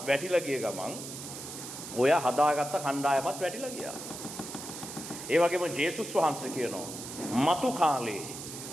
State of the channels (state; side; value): noise; right; hiss, 10 dB below the sound